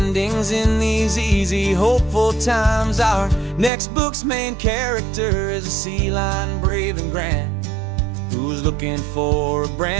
in these easy, hopeful times. Our next book's main character is a sea lion, brave and grand, who's looking for a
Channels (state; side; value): drops out; left; at 3.7 s